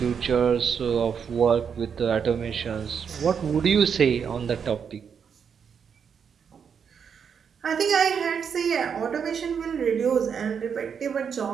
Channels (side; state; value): left; quieter; 7.0 dB